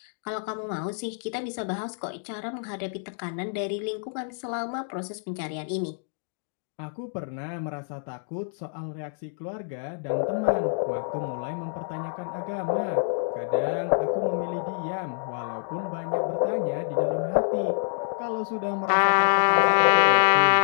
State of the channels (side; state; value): right; silent; 60 dB below the other